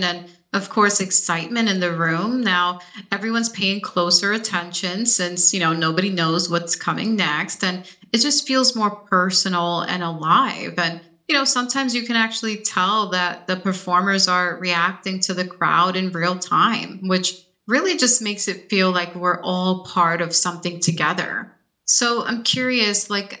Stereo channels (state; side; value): identical; both; correlation 1.00